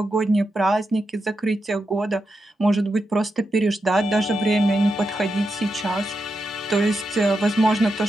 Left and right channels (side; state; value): both; normal; correlation 0.86